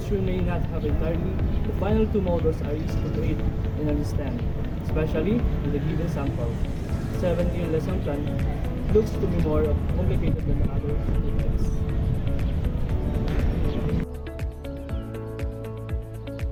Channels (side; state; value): both; identical; correlation 1.00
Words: we may not have entirely. The final 2 models are easy to create and understand, especially with a given sample. 7 lesson plan looks to be more complicated than the other 2 types.